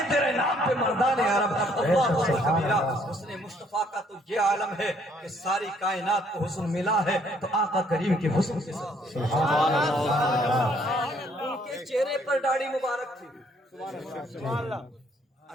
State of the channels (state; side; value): normal; both; correlation 0.65